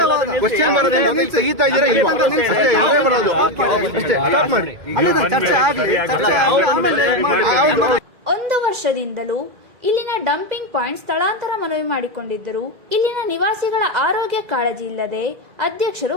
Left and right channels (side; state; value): left; late; 2.0 ms